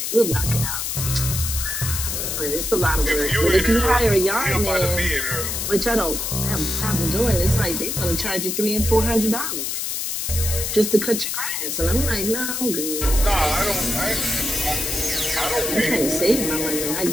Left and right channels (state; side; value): noise; left; hiss, 2 dB below the sound